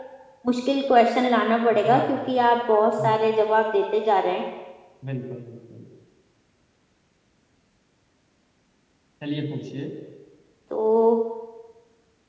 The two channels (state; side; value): identical; both; correlation 1.00